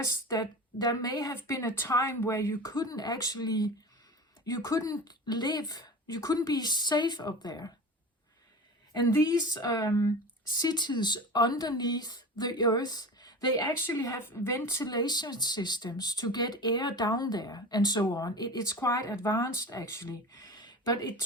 that there may have been a time where you couldn't live, you couldn't be safe up there. And these cities underneath the Earth, they actually have ventilation systems to get air down there and so on. It's quite advanced actually. But it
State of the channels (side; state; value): both; normal; correlation 0.32